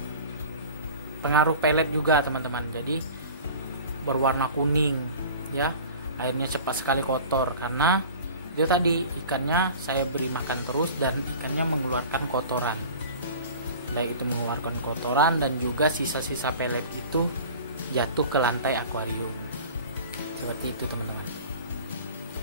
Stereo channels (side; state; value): both; inverted; correlation -0.41